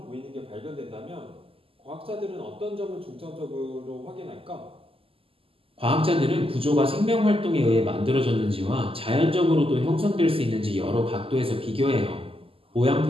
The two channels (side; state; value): left; late; 0.26 ms